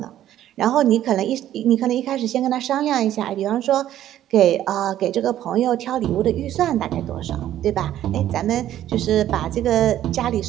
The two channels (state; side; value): quieter; left; 12.2 dB